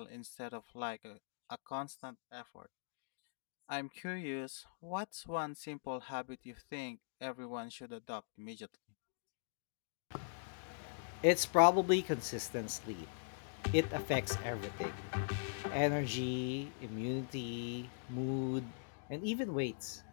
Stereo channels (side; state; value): right; silent; digital silence